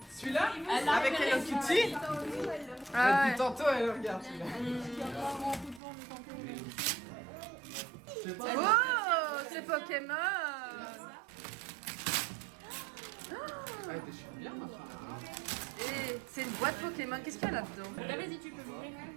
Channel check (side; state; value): left; drops out; at 5.8 s